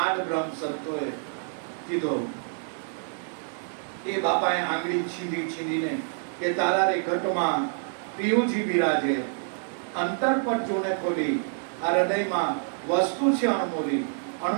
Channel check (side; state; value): left; silent; 60 dB below the other